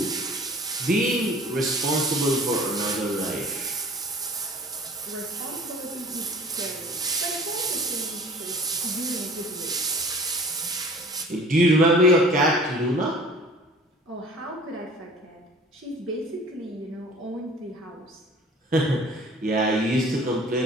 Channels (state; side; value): normal; both; correlation 0.47